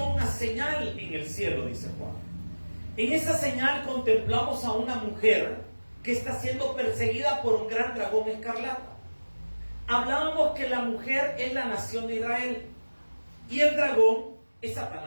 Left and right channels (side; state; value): both; inverted; correlation -1.00